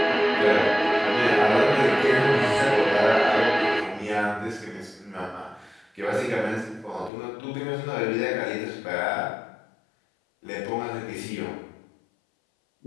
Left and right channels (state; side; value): drops out; right; at 7.1 s